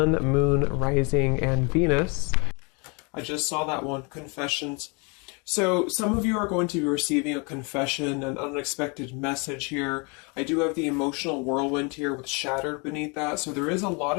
Moon, Rising, and Venus. I just saw that one, confessions. So some of you are going to be receiving a confession, an unexpected message here. I do have the emotional whirlwind here with shattered beneath that. So there is a lot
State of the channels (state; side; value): quieter; right; 31.9 dB